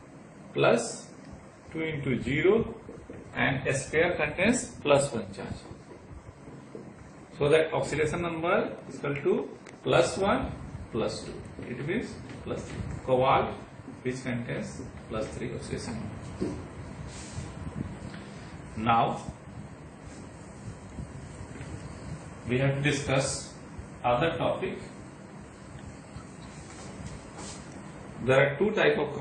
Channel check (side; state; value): both; identical; correlation 1.00